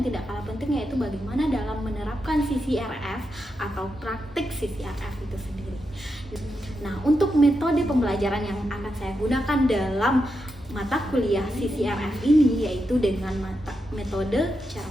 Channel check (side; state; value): both; normal; correlation 0.86